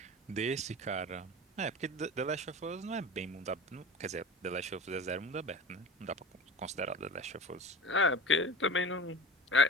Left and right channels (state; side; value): normal; both; correlation 0.35